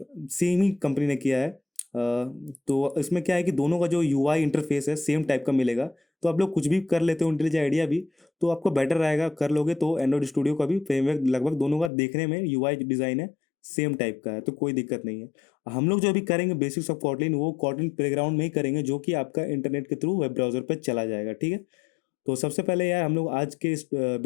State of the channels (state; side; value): drops out; right; at 11.9 s